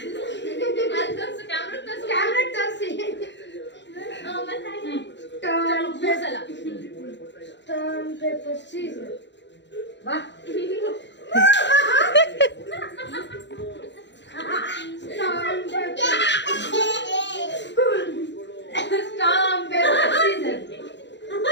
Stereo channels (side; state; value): right; late; 0.52 ms